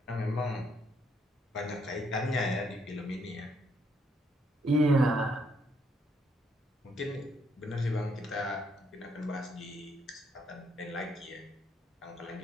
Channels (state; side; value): normal; both; correlation 0.72